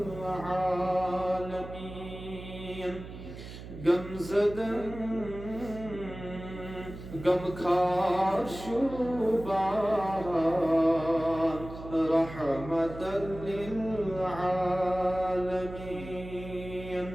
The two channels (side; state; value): right; noise; hum, 12 dB below the sound